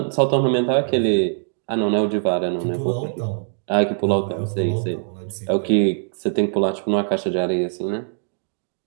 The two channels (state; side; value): silent; left; digital silence